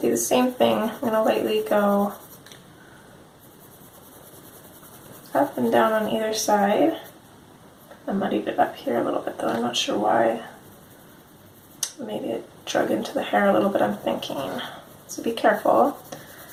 do the same thing. I'm going to lightly go up and down on either side. I muddied it up here a little bit though, I'm not sure why. Maybe it drug into the hair a little bit, I'm thinking. So be careful.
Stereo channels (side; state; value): both; identical; correlation 1.00